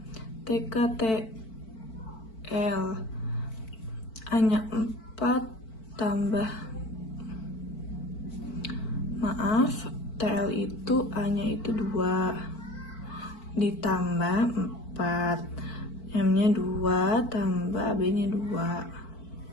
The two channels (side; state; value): right; late; 4.5 ms